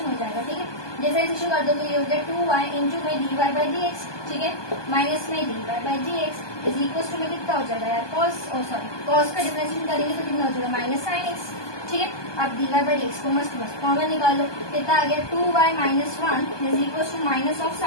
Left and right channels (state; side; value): late; right; 1.2 ms